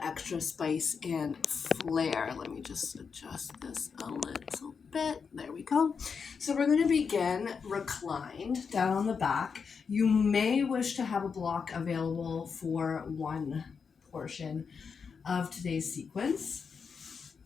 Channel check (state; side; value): quieter; right; 5.9 dB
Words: spice and flair. Let me just adjust this a little bit. There we go. So we're going to begin reclined down on the back. You may wish to have a block available for one portion of today's sequence.